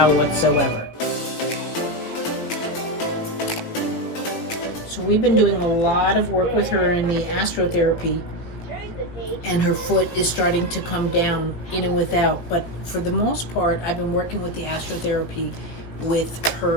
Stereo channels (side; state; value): right; late; 18 ms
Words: whatsoever. So we've been doing a lot of work with her in the astrotherapy, and her foot is starting to come down in and without. But for the most part, I've been working with the astrotherapy with